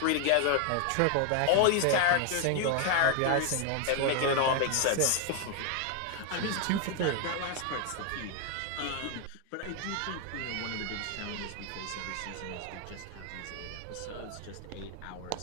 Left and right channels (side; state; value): both; different; correlation 0.00